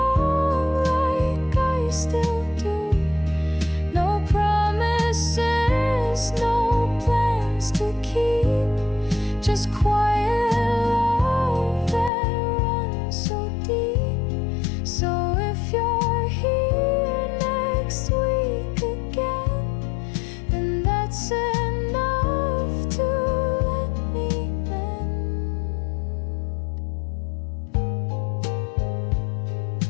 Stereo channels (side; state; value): right; drops out; at 12.1 s